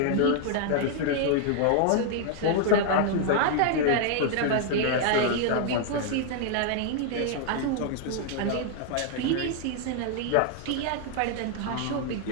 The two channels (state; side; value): different; both; correlation 0.00